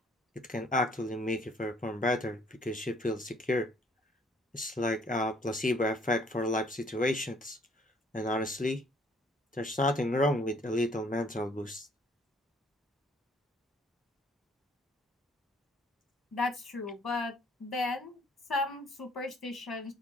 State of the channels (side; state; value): both; normal; correlation 0.61